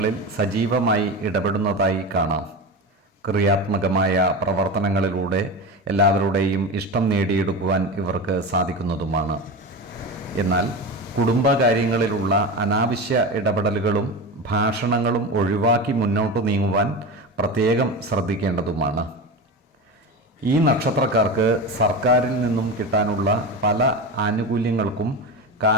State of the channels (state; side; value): normal; both; correlation 0.24